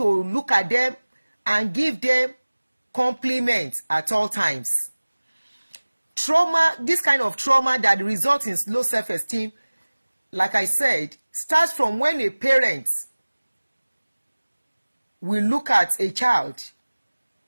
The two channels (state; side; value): inverted; both; correlation -1.00